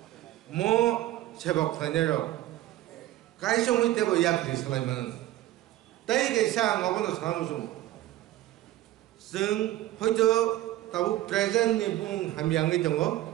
मो सेबक खानेरो काइसंनि टेबो याफ्रि सलायमान ताइ गेसा ngबनो सामसुम जों हयतो ताबु प्रेजेन्ट नि बुं हामियांगै दङ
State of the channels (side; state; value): left; quieter; 14.9 dB